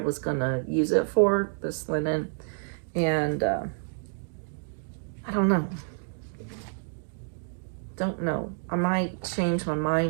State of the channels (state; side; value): silent; left; digital silence